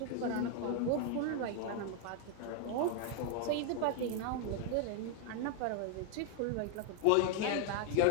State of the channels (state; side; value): different; both; correlation 0.00